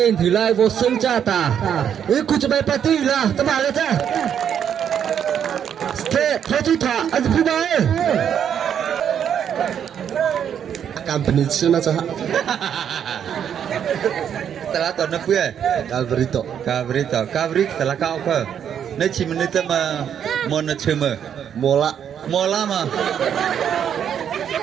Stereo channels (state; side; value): quieter; left; 8.7 dB